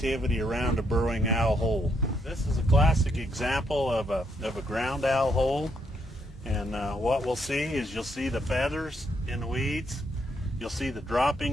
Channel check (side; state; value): both; normal; correlation 0.75